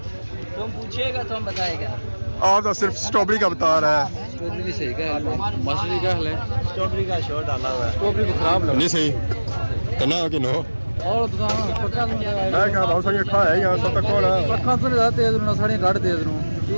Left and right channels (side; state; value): both; inverted; correlation -1.00